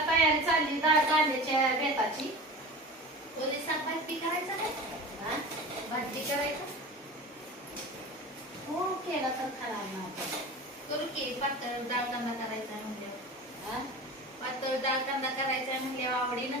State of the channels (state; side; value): normal; both; correlation 0.33